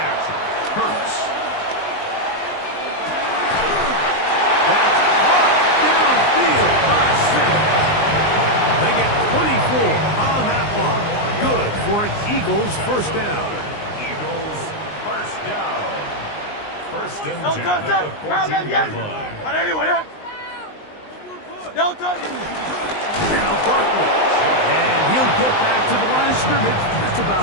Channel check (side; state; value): right; late; 19 ms